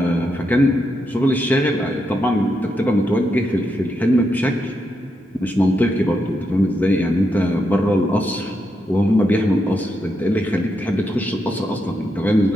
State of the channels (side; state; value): both; normal; correlation 0.82